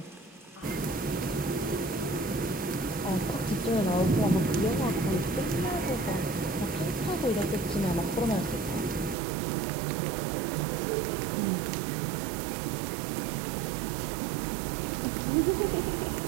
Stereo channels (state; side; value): drops out; left; at 9.2 s